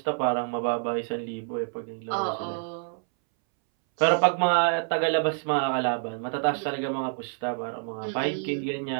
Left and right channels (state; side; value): silent; left; 60 dB below the other